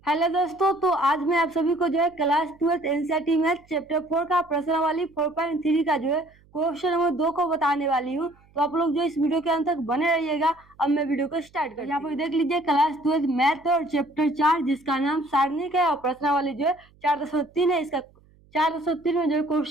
Hello दोस्तों, तो आज मैं आप सभी को जो है क्लास 12 एनसीईआरटी मैथ चैप्टर 4 का प्रश्नावली 4.3 का जो है क्वेश्चन नंबर 2 को बताने वाली हूँ। तो आप लोग जो इस वीडियो के अंत तक बने रहिएगा। अब मैं वीडियो को स्टार्ट करती हूँ। यहाँ पर देख लीजिए क्लास 12 मैथ और चैप्टर 4 जिसका नाम सारणिक है और प्रश्नावली जो है 4.3 है। इसका 4.3 में जो है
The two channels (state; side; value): noise; right; hum, 30 dB below the sound